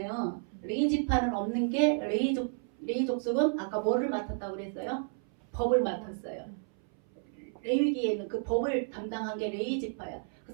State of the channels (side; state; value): left; silent; 57 dB below the other